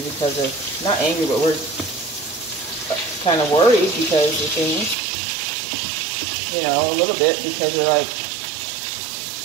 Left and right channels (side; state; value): left; drops out; at 5.0 s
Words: of, not angry, but we're kind of worried because of things, you know, a little bit, because we're like,